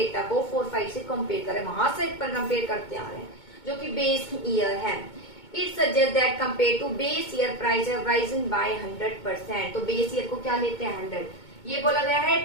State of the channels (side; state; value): right; late; 2.2 ms